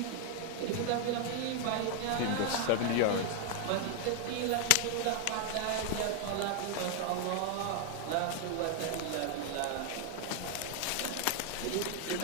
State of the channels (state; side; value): different; both; correlation 0.00